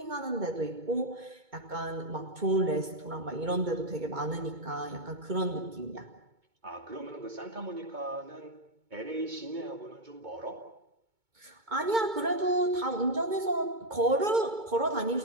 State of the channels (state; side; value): late; left; 2.2 ms